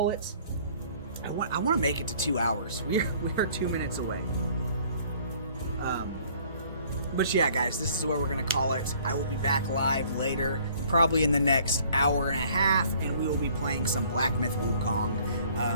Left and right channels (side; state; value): both; inverted; correlation -0.56